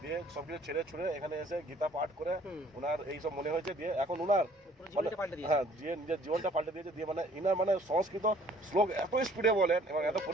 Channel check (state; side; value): normal; both; correlation 0.56